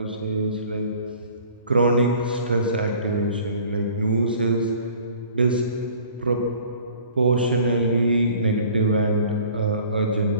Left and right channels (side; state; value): both; inverted; correlation -0.49